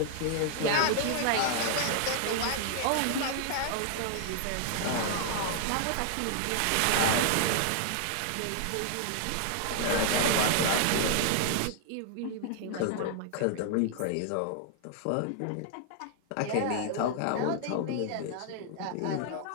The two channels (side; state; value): both; different; correlation 0.00